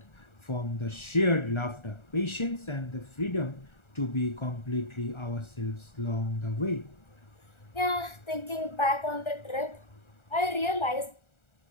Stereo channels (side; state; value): right; late; 1.4 ms